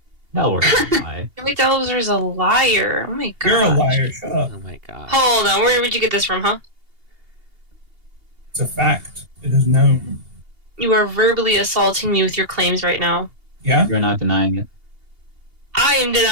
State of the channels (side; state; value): left; late; 2.8 ms